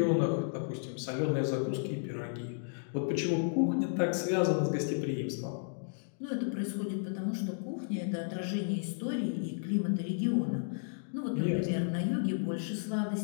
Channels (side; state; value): right; silent; digital silence